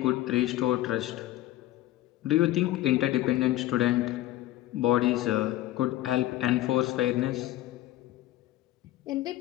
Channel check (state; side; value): quieter; right; 15.3 dB